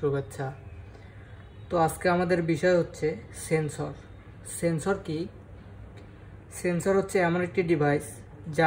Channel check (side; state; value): both; identical; correlation 1.00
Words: তো আজকে আমাদের বিষয় হচ্ছে সেন্সর। সেন্সর কি? সেন্সর হচ্ছে এমন একটি ডিভাইস